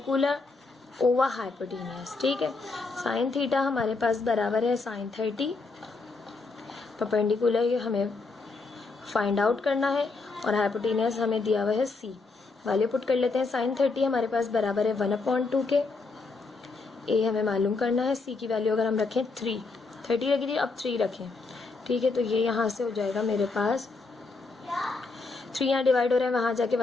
over hypotenuse. ठीक है, साइन थीटा हमारे पास बराबर है साइन 30, परपेंडिकुलर हमें फाइंड आउट करना है और हाइपोटेनियस हमें दिया हुआ है सी। वैल्यू पुट कर लेते हैं। साइन 30 हमारे पास बराबर है 1/2 के, ए हमें मालूम करना है, सी की वैल्यू अगर हम रखें 30 लगी थी, अब 3 रखें। ठीक है, तो ये यहाँ से हो जाएगा मेरे पास 3 यहाँ डिवाइड हो रहा है, वहाँ जाके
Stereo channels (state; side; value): quieter; right; 3.9 dB